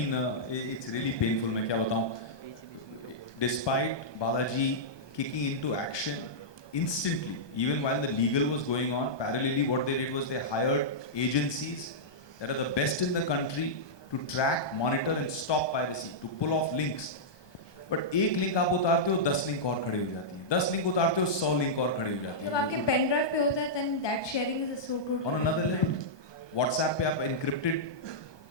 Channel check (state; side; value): late; right; 1.2 ms